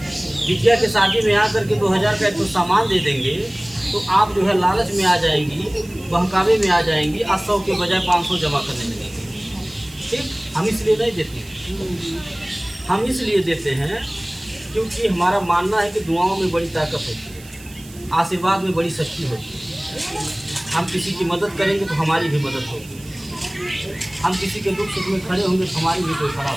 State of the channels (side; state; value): right; noise; hiss, 21 dB below the sound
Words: बिटिया के शादी में आकर के 2000 का तो सामान दे देंगे, तो आप जो है लालच में आ जाएंगी, बहकावे में आ जाएंगी, 100 के बजाय 500 जमा करने लगेंगे। ठीक, हम इसलिए नहीं देते, हम इसलिए देते हैं क्योंकि हमारा मानना है कि दुआओं में बड़ी ताकत होती है, आशीर्वाद में बड़ी शक्ति होती है। हम किसी की मदद करेंगे तो हमारी भी मदद होगी, हम किसी के दुख सुख में खड़े होंगे तो हमारी भी कोई खड़ा